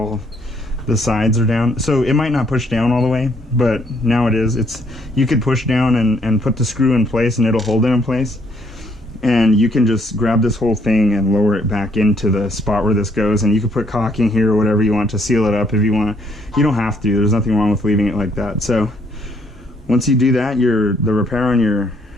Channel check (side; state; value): both; normal; correlation 0.69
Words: the sides are down. So it might not push down all the way, but now it is. You could push down and put the screw in place, and it'll hold it in place. And you can just grab this whole thing and lower it back into the spot where this goes, and you can put caulking here or whatever you want to seal it up if you want. You don't have to. There's nothing wrong with leaving it like that. So Once you do that, the repair on your